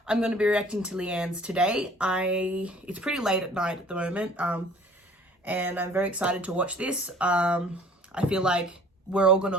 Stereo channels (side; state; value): both; normal; correlation 0.51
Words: I'm going to be reacting to Leigh-anne's today. It's pretty late at night at the moment, and I'm very excited to watch this. I feel like we're all going